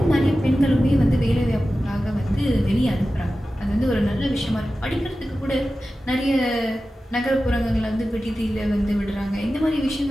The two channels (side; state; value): both; normal; correlation 0.94